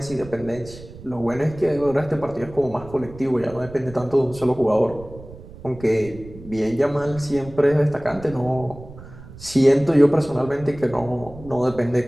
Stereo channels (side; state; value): right; noise; rumble, 17 dB below the sound